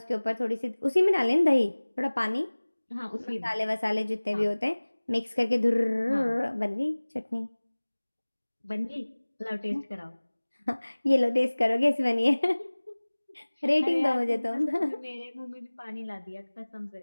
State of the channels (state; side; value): inverted; both; correlation -1.00